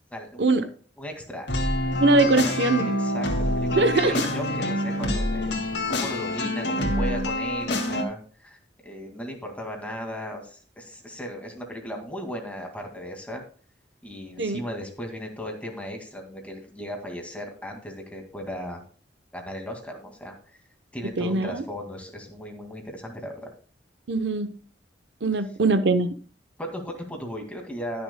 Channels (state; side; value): normal; both; correlation 0.35